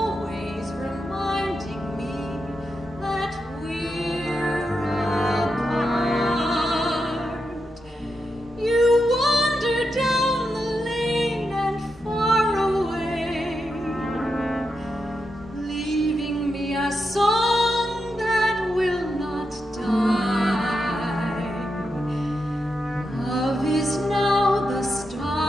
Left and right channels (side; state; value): both; normal; correlation 0.86